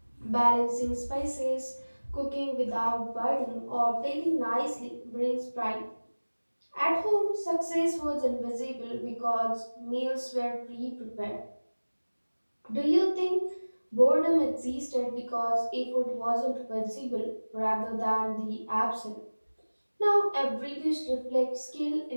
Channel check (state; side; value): inverted; both; correlation -1.00